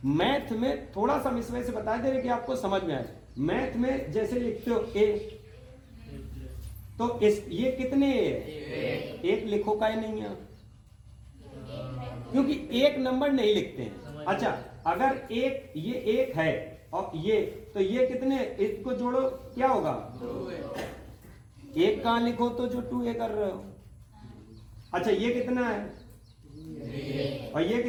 मैथ में थोड़ा सा इस वजह से बता दे रहे कि आपको समझ में आए। मैथ में जैसे लिखते हो A, तो इस ये कितने एक लिखो का ही नहीं है, क्योंकि एक नंबर नहीं लिखते हैं। अच्छा अगर एक, ये 1 है और ये, तो ये कितने, इसको जोड़ो क्या होगा, 1 कहां लिखो तो जो 2A कर रहे हो। अच्छा ये कितना है, और ये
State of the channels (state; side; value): identical; both; correlation 1.00